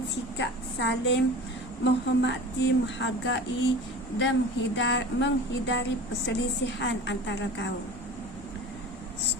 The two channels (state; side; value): noise; left; rumble, 20 dB below the sound